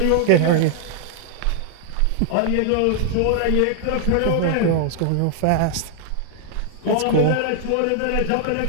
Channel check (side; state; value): both; different; correlation 0.00